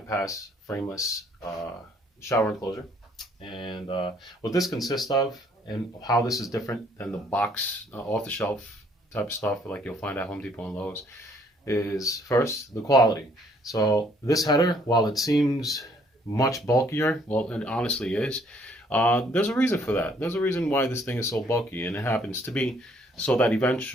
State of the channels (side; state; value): both; normal; correlation 0.64